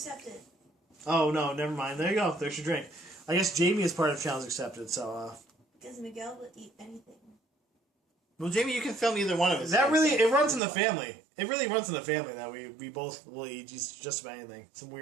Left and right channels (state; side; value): drops out; left; at 10.6 s